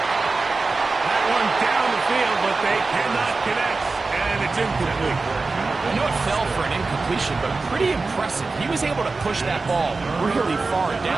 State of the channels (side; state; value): left; quieter; 3.8 dB